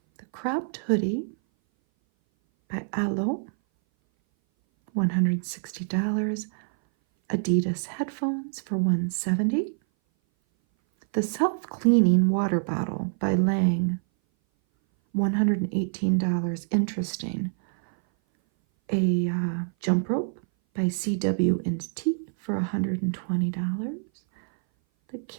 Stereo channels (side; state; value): left; silent; 58 dB below the other